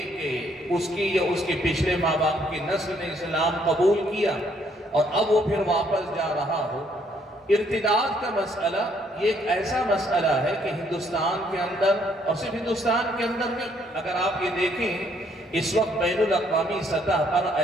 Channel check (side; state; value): both; normal; correlation 0.68